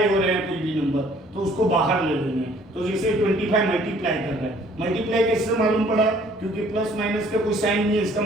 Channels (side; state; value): both; normal; correlation 0.58